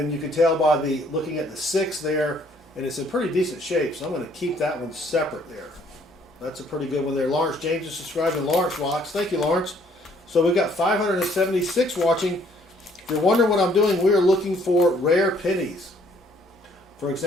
you can tell by the looking at the 6 there, and it's in pretty decent shape. So I'm going to keep that one separate there. That's a pretty good one there. Lawrence James is subscribed, and Lawrence rocks. Thank you, Lawrence. So we've got 576 watching. If you're wondering what I'm doing, we are looking for rare pennies. For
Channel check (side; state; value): both; normal; correlation 0.63